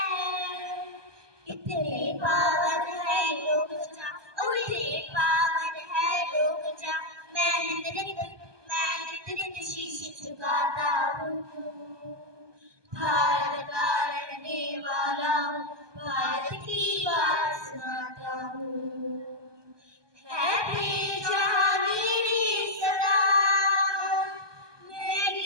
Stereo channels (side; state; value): left; late; 1.2 ms